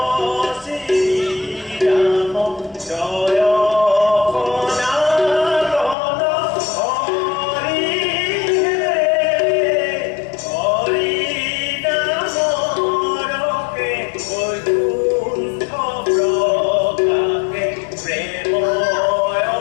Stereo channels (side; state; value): right; drops out; at 6.0 s